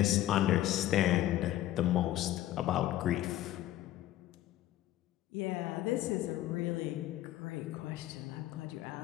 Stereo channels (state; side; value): quieter; right; 14.0 dB